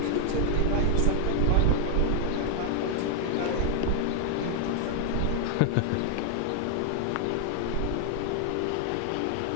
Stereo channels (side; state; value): both; different; correlation 0.00